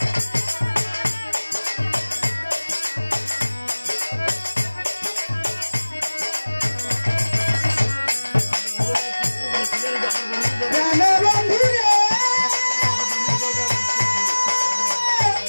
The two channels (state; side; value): inverted; both; correlation -1.00